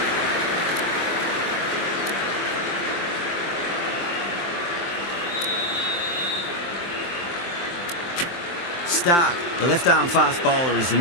Stark, the left-arm fast bowler, is the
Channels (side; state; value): right; late; 23 ms